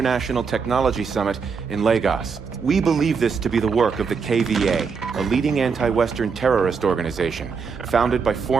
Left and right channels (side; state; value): left; quieter; 5.5 dB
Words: technology summit in Lagos. We believe this to be the work of the KVA, a leading anti-Western terrorist organization founded by